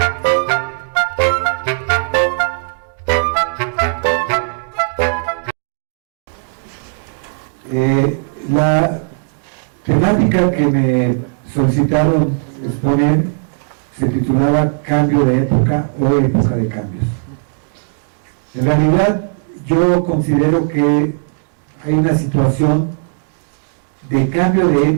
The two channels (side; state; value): left; silent; digital silence